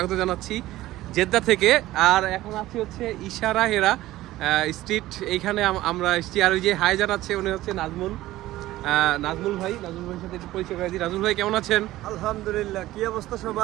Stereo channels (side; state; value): left; quieter; 16.1 dB